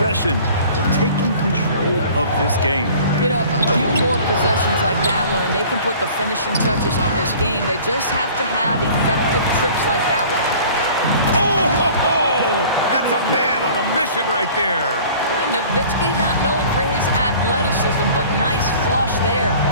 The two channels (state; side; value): inverted; both; correlation -0.47